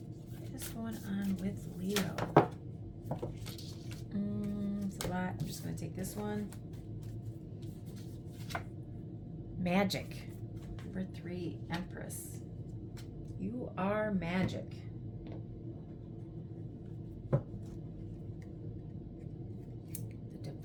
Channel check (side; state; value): both; identical; correlation 1.00